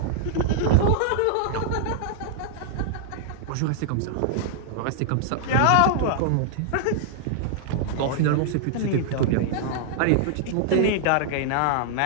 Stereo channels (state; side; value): different; both; correlation -0.01